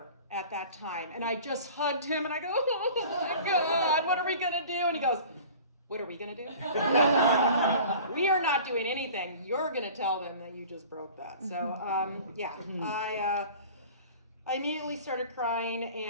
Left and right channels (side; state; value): both; inverted; correlation -0.43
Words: at that time, and I just hugged him, and I go, oh my God, what are we gonna do? And he goes, what are we gonna do? We are not doing anything. You're gonna tell them that you just broke that. So yeah, I immediately started crying,